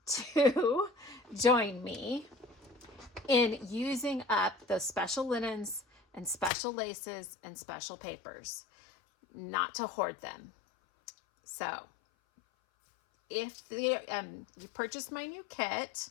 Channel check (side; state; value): right; drops out; at 6.5 s